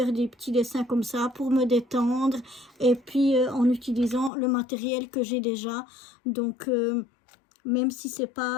des petits dessins comme ça pour me détendre. Et puis en utilisant le matériel que j'ai déjà. Donc même si c'est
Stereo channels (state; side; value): drops out; right; at 4.3 s